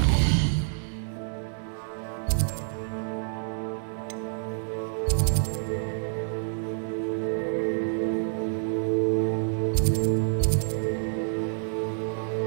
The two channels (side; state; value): left; silent; 57 dB below the other